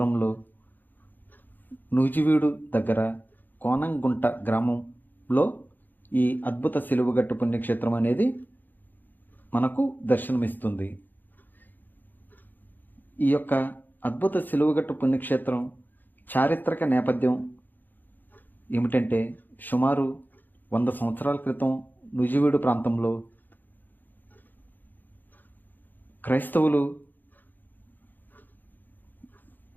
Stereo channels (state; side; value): late; right; 0.088 ms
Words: నూజివీడు దగ్గర కోనంగుంట గ్రామంలో ఈ అద్భుత సిలువగట్టు పుణ్యక్షేత్రం అనేది మనకు దర్శనమిస్తుంది. ఈ యొక్క అద్భుత సిలువగట్టు పుణ్యక్షేత్రం చారిత్రక నేపథ్యం ఏమిటంటే, సుమారు 100 సంవత్సరాల క్రితం నూజివీడు ప్రాంతంలో క్రైస్తవులు